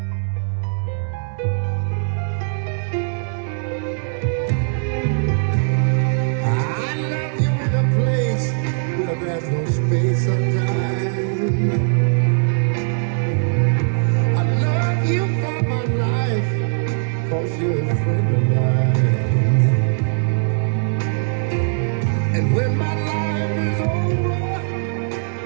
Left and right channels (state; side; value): silent; left; digital silence